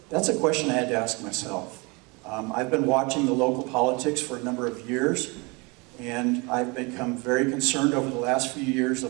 That's a question I had to ask myself. I've been watching the local politics for a number of years, and I've become very concerned over the last few years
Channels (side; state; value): left; quieter; 28.1 dB